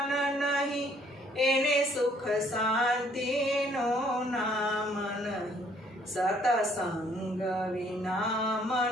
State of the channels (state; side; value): normal; both; correlation 0.63